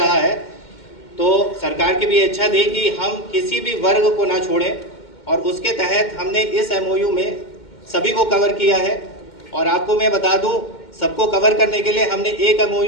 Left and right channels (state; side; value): late; right; 2.1 ms